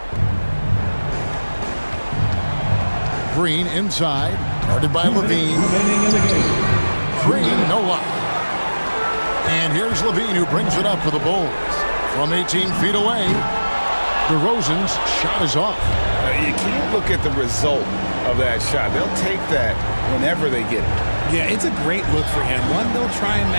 Green inside, guarded by Levine. Green, no luck. And here's Levine, who brings it up for the Bulls. From 18 feet away, DeRozan's shot is off. You can't look at the result of that shot. They'll take that whenever they get it. Yeah, it's a great look for him. One they'll try and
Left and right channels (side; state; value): both; inverted; correlation -1.00